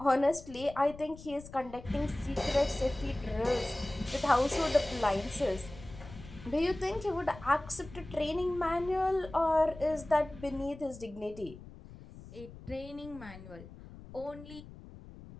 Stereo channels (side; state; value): left; noise; rumble, 16 dB below the sound